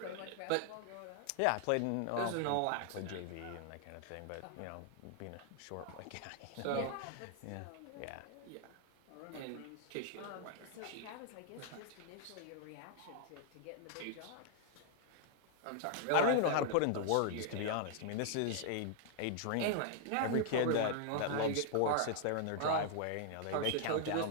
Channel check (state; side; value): different; both; correlation 0.00